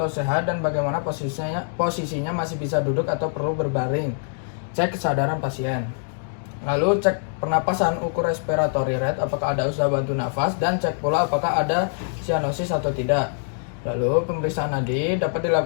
sehat dan bagaimana posisinya masih bisa duduk atau perlu berbaring. Cek kesadaran pasien. Lalu cek pernapasan, ukur respiratory rate, apakah ada usaha bantu nafas, dan cek pula apakah ada sianosis atau tidak. Lalu pemeriksaan nadi dapat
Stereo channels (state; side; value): silent; right; digital silence